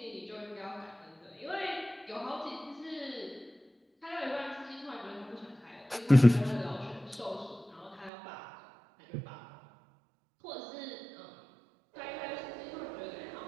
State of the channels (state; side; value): drops out; left; at 8.1 s